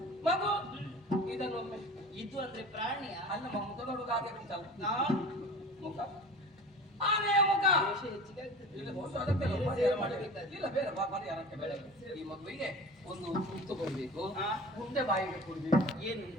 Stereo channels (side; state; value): both; normal; correlation 0.38